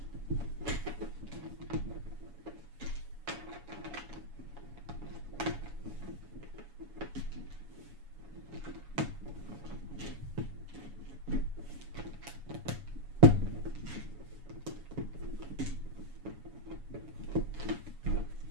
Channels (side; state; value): left; late; 7.1 ms